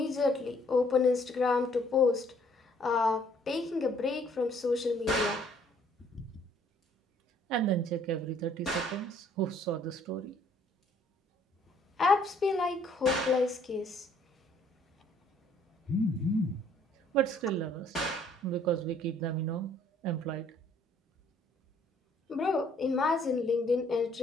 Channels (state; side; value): normal; both; correlation 0.62